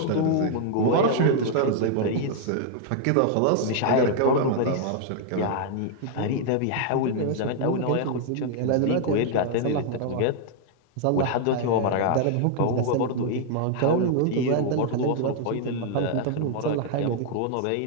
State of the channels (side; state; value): both; different; correlation 0.00